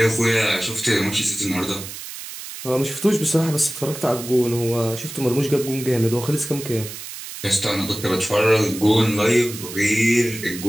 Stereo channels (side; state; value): right; noise; hiss, 11 dB below the sound